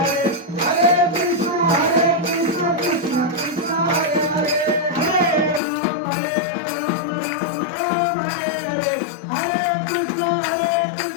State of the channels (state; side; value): drops out; right; at 5.6 s